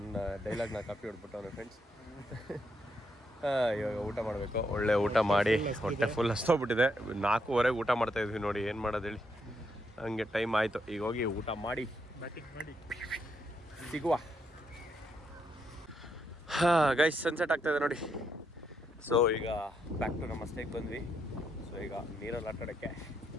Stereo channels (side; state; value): both; normal; correlation 0.78